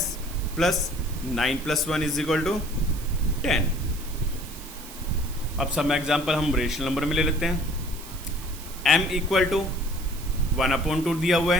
प्लस 9 + 1 = 10। अब सब एग्जाम्पल हम रेशनल नंबर में ले लेते हैं। m = 1/2 दिया हुआ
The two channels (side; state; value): right; noise; hiss, 15 dB below the sound